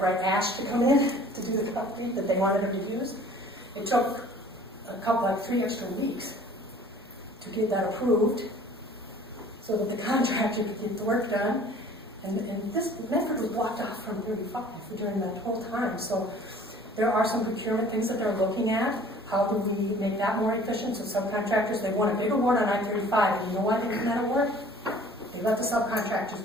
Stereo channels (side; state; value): both; normal; correlation 0.50